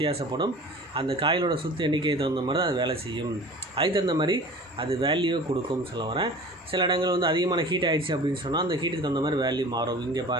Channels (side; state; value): both; normal; correlation 0.41